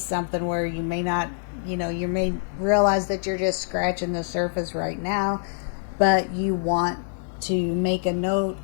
something where you may not, you may realize that you're just scratching the surface right now, but you want to make a note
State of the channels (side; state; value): right; silent; 62 dB below the other